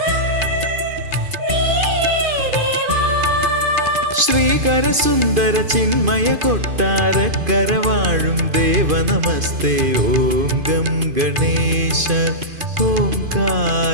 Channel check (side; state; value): left; late; 2.5 ms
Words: നീയേ ദേവാ ശ്രീകര സുന്ദര ചിന്മയ കൊട്ടാരക്കര വാഴും ദേവ നമസ്തേ ഓം ഗം ഗണേശ